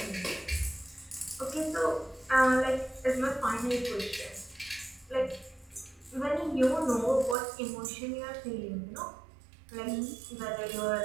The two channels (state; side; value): drops out; left; at 7.4 s